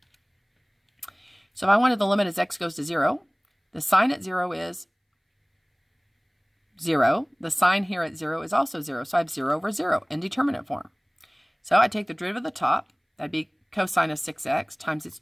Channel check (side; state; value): both; identical; correlation 1.00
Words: So if I wanted the limit as x goes to 0, the sign at 0 is 0. The sign here at 0 is also 0. So I have 0 over 0, indeterminate form. So I take the derivative of the top, that'd be cosine of 6x, times its